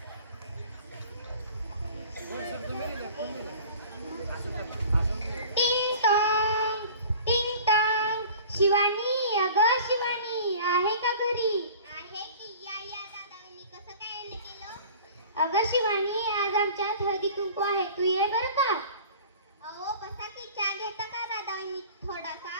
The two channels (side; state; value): both; inverted; correlation -0.44